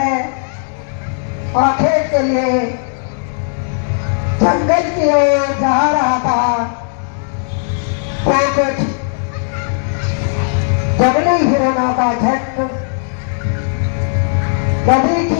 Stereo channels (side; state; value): right; silent; digital silence